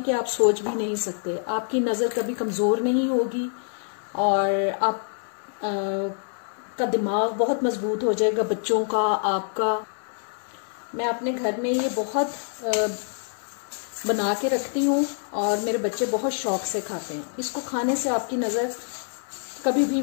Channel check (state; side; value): silent; right; digital silence